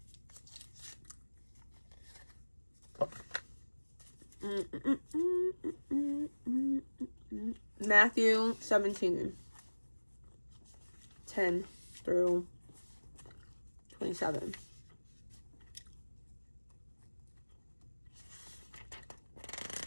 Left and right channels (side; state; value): both; inverted; correlation -1.00